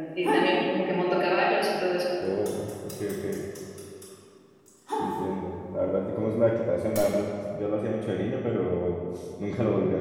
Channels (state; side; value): identical; both; correlation 1.00